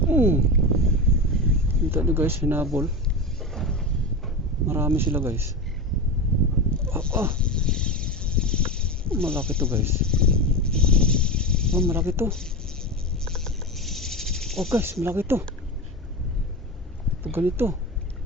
Kita nyo guys, hinabol. Marami sila guys. Malaki to guys. Malaki to. Guys, malaki to. Pag ganito,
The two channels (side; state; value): both; normal; correlation 0.22